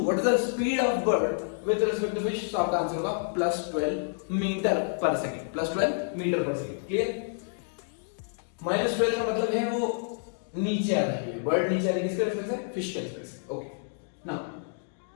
what is the speed of bird with respect to fish, तो आपका आंसर होगा +12 meter per second, +12 meter per second. Clear? -12 का मतलब है वो नीचे आ रही है, बर्ड नीचे आ रही है, किसके रेस्पेक्ट से? फिश के रेस्पेक्ट से। Okay, now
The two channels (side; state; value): right; silent; digital silence